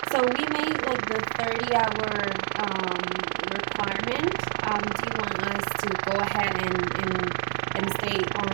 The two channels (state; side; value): silent; left; digital silence